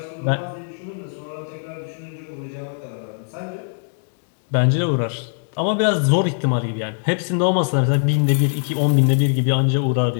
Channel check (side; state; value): right; silent; 65 dB below the other